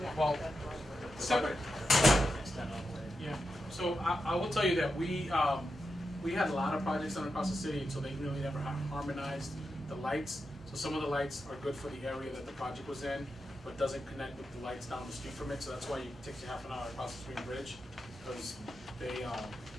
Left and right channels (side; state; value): both; normal; correlation 0.88